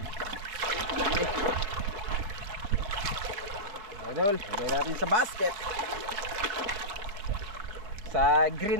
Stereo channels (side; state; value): left; late; 4.8 ms